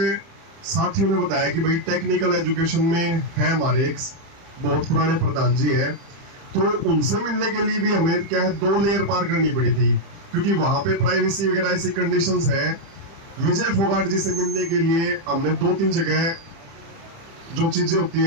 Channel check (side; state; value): left; late; 30 ms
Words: साथियों ने बताया कि भाई टेक्निकल एजुकेशन में है हमारे एक बहुत पुराने प्रधान जी है, तो उनसे मिलने के लिए भी हमें क्या है 2 लेयर पार करनी पड़ी थी, क्योंकि वहां पे प्राइवेसी वगैरह ऐसी कंडीशंस है। विजय फोगाट जी से मिलने के लिए हमने 2-3 जगह जो चीजें होती